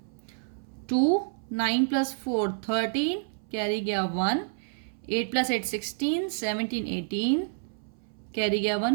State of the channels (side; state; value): left; silent; 59 dB below the other